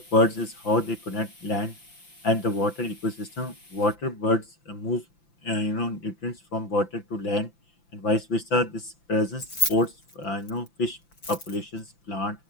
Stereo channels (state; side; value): late; right; 5.9 ms